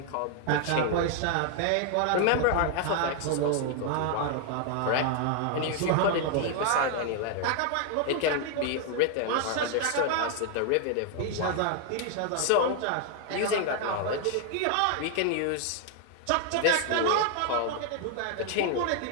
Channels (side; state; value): both; different; correlation 0.00